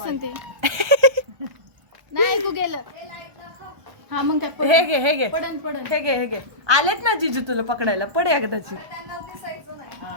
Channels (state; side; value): late; left; 1.2 ms